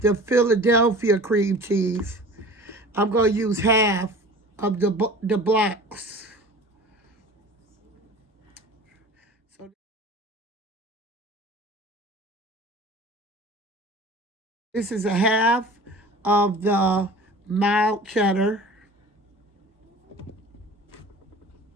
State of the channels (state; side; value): normal; both; correlation 0.41